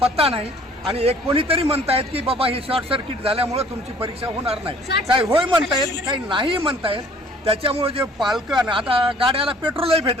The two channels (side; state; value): both; normal; correlation 0.54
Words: पत्ता नाही। आणि एक कोणीतरी म्हणतायत की बाबा हे शॉर्ट सर्किट झाल्यामुळे तुमची परीक्षा होणार नाही, काही होय म्हणतायत काही नाही म्हणतायत। त्याच्यामुळे जे पालकं आता गाड्याला पेट्रोलही